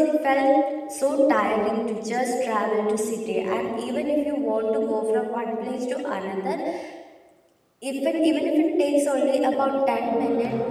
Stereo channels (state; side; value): identical; both; correlation 1.00